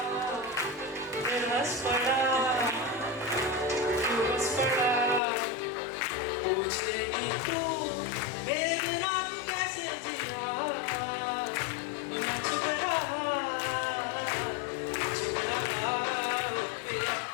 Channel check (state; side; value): drops out; right; at 5.2 s